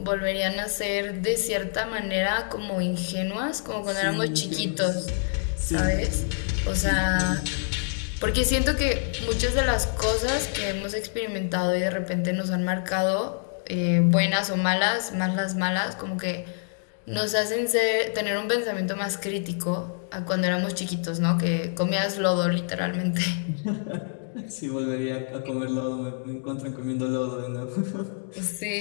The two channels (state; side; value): silent; right; digital silence